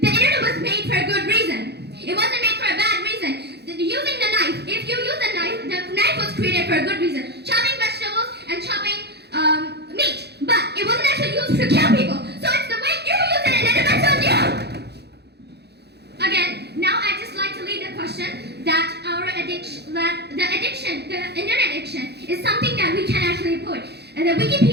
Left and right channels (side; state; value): left; late; 0.48 ms